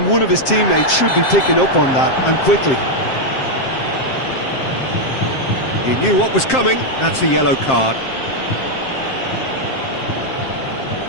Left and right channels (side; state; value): right; late; 7.6 ms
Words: one of his teammates should be picking up on that, and quickly. He knew what was coming. That's a yellow card.